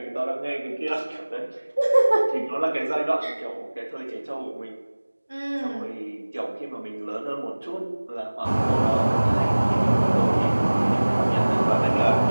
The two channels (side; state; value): both; inverted; correlation -1.00